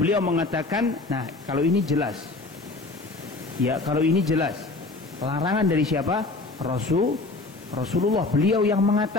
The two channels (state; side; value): quieter; right; 3.4 dB